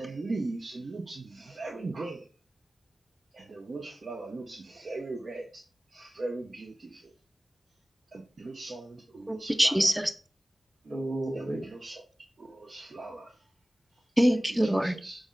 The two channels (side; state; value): both; normal; correlation 0.98